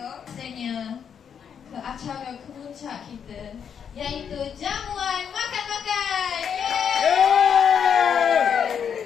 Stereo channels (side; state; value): right; quieter; 7.7 dB